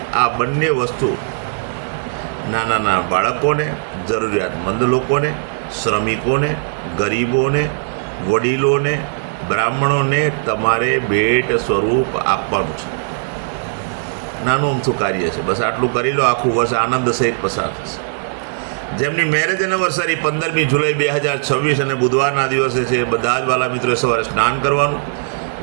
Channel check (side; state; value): left; silent; digital silence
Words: આ બંને વસ્તુ નાના બાળકોને, જરૂરિયાતમંદ લોકોને, શ્રમિકોને, ગરીબોને, વડીલોને, બ્રાહ્મણોને તમારે ભેટ સ્વરૂપ આપવાનું છે. નાનું અમથું કાર્ય છે. બસ આટલું કરી લો. આખું વર્ષ આનંદ સહિત પસાર થશે. જેમની મેરેજ એનિવર્સરી 15મી જુલાઈ 2026 અને બુધવારના દિવસે છે, બધા જ વાલા મિત્રોએ સવારે સ્નાન કરવાનું,